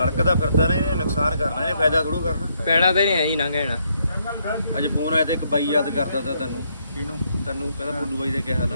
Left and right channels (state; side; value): inverted; both; correlation -0.74